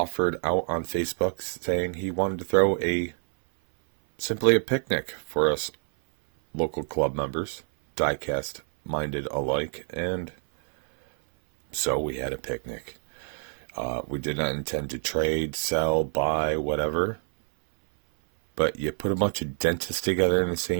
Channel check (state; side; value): silent; left; 58 dB below the other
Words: out on Facebook saying he wanted to throw simply a picnic for us local club members, Diecast minded alike, and so we had a picnic. We did not intend to trade, sell, buy, whatever. But you put a bunch of dentists together in the